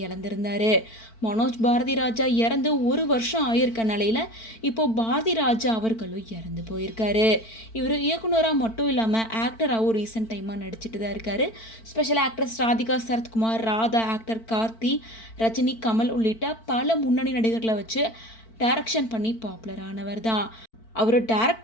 இழந்திருந்தார். மனோஜ் பாரதி ராஜா இறந்து ஒரு வருஷம் ஆயிருக்க நிலையில் இப்போது பாரதி ராஜா அவர்களும் இறந்து போயிருக்காரு. இவர் இயக்குனராக மட்டும் இல்லாமல் ஆக்டராகவும் ரீசெண்ட் டைமாக நடிச்சிட்டு தான் இருக்கார். Special actress Radhika Sarathkumar, Radha, actor Karthi, Rajini, Kamal உள்ளிட்ட பல முன்னணி நடிகர்களை வச்சு டைரக்ஷன் பண்ணி பாப்புலர் ஆனவர் தான். அவர்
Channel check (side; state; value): right; late; 4.5 ms